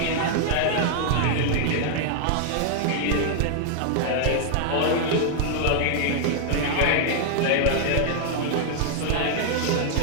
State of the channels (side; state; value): both; different; correlation 0.00